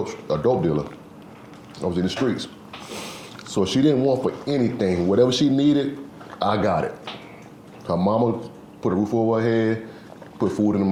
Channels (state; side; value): identical; both; correlation 1.00